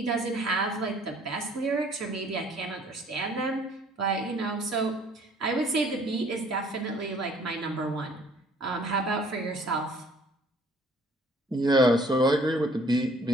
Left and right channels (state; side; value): normal; both; correlation 0.57